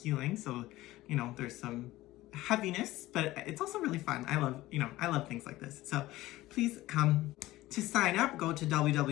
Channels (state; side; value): quieter; right; 17.1 dB